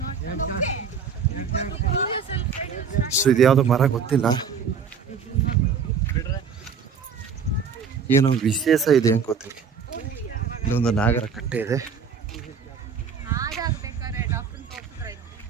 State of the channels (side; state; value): left; quieter; 6.2 dB